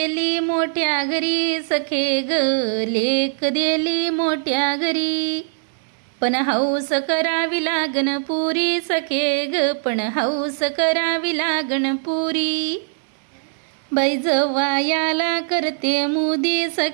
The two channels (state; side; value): silent; left; digital silence